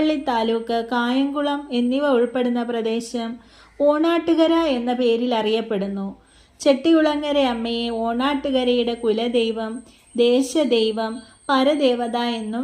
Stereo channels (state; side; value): identical; both; correlation 1.00